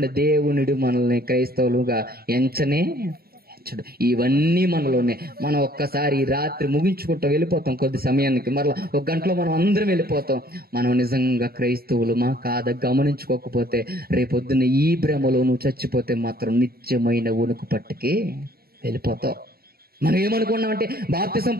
దేవునుడు మనల్ని క్రైస్తవులుగా ఎంచనే ఎంచడు. ఇవన్నీ మనలోనే. మనం ఒక్కసారి రాత్రి ముగించుకుంటాం, వెళ్ళిపోతాం. కొద్ది సమయానికి మరలా ఒక గంటలో మనం అందరం వెళ్ళిపోతాం. మనం నిజంగా క్రైస్తవులమా కాదా గమనించుకోకపోతే రేపొద్దున ఈ భ్రమలో నువ్వు చచ్చిపోతే మాత్రం నిత్యమైన ఉనికి పట్టుకి వెళ్ళిపోతావు. మనం ఏమనుకున్నామంటే బాప్తిసం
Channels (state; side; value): late; left; 0.44 ms